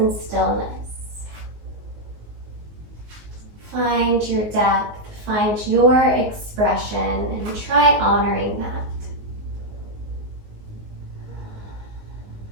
stillness. Find your depth, find your expression, and try honoring that.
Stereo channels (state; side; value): late; left; 19 ms